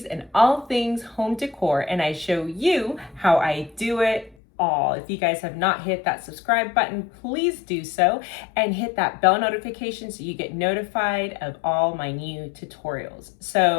and all things home decor, and I show you how I do it all. If you guys have not hit that subscribe button, please do so and hit that bell notification so you get notified of all my new tutorials.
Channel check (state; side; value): drops out; right; at 4.4 s